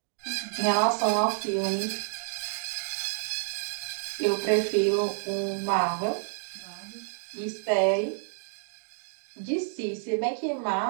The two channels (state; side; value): silent; left; digital silence